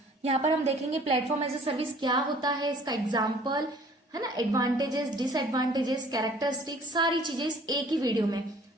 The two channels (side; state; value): both; normal; correlation 0.53